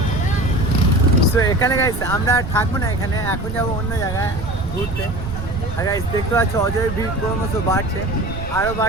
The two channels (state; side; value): noise; right; rumble, 9 dB below the sound